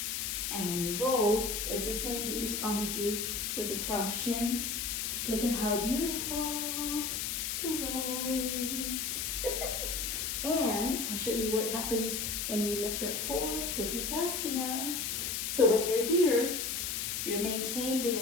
And when you roll, it's the same that you saw me do with the crossed shins. Look at how beautiful the roll is. And I'll show you what happens when we lift up for Chikitsa. So when you're here, you maintain the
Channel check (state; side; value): noise; left; hiss, 1 dB below the sound